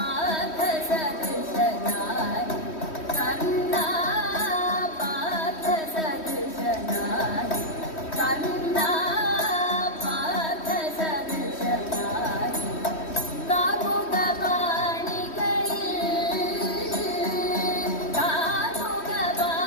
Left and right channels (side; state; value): right; late; 3.1 ms